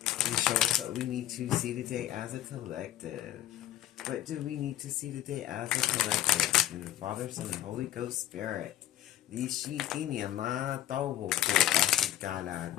And show us what we need to see today as a collective. What do we need to see today as a collective? In the Father, Son, and Holy Ghost Spirit. Ishitinyana Tawoko Ashikala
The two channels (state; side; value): quieter; right; 13.3 dB